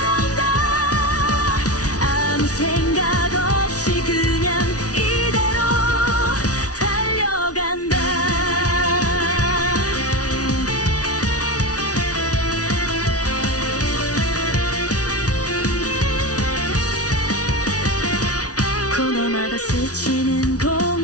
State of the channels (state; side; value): late; right; 0.68 ms